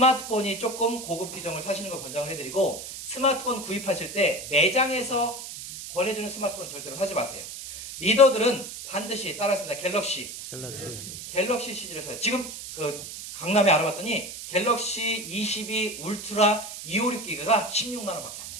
조금 고급 기종을 사시는 걸 권장을 해드리고, 스마트폰 구입하실 때 매장에서 권해주는 스마트폰 절대로 사지 마세요. 리더들은 반드시 따라했습니다. 갤럭시 시리즈를 사요. 지금 그 강남에 알아봤더니 갤럭시 22 울트라 256기가가 16만 원밖에 안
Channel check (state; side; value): noise; right; hiss, 10 dB below the sound